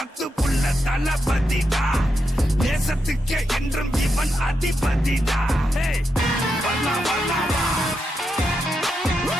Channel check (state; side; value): normal; both; correlation 0.85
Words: புள்ள தளபதிடா. நேசத்துக்கே என்றும் இவன் அதிபதிடா. ஹேய் வரலாம் வரலாமா